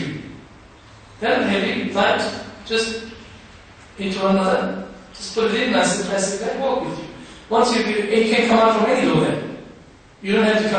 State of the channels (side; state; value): both; identical; correlation 1.00